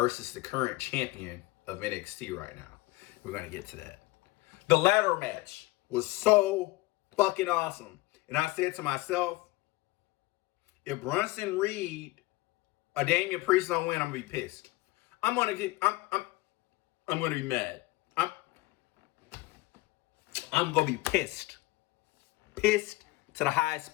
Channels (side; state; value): right; quieter; 20.1 dB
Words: the current champion of NXT right now. We're going to get to that. The ladder match was so fucking awesome. And I said to myself, if Bronson Reed or Damian Priest don't win, I'm going to be pissed. I'm going to be mad. I'm going to be pissed. Pissed to the highest